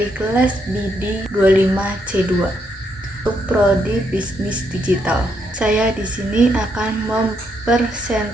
kelas BD 25C2 untuk prodi bisnis digital. Saya di sini akan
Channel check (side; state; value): both; normal; correlation 0.76